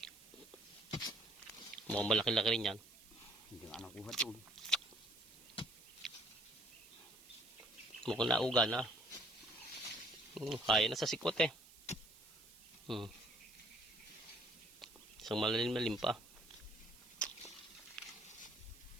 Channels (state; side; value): noise; right; hiss, 21 dB below the sound